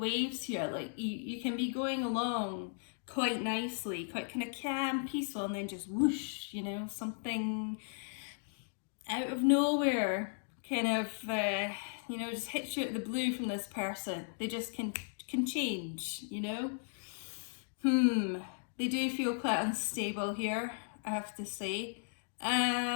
here, like you can be going along quite nicely, quite kind of calm, peaceful, and then just whoosh, you know, something out of nowhere kind of, you know, just hits you out of the blue from this person. They just can change, you know. They do feel quite unstable here, I have to say.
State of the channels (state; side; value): silent; right; digital silence